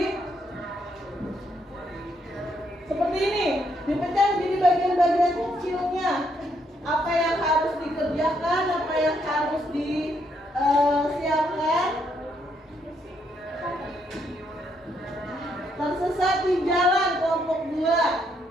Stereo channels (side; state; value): both; normal; correlation 0.74